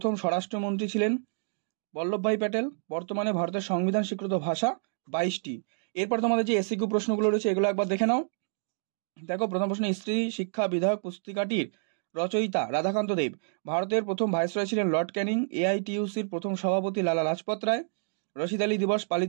স্বরাষ্ট্রমন্ত্রী ছিলেন বল্লভভাই প্যাটেল। বর্তমানে ভারতের সংবিধান স্বীকৃত ভাষা 22টি। এরপর তোমাদের যে এসিকিউ প্রশ্নগুলো রয়েছে এগুলো একবার দেখে নাও। দেখো প্রথম প্রশ্ন, স্ত্রী শিক্ষা বিধায়ক পুস্তিকাটির রচয়িতা রাধাকান্ত দেব। ভারতের প্রথম ভাইসরয় ছিলেন লর্ড ক্যানিং। এআইটিইউসির প্রথম সভাপতি লালা লাজপত রায়। রশিদ আলী দিবস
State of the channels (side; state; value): left; silent; digital silence